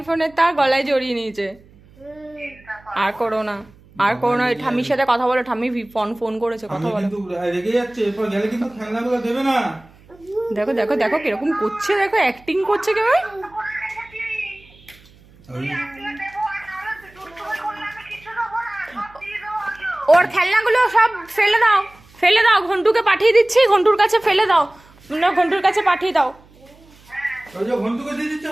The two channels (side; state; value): right; noise; hum, 27 dB below the sound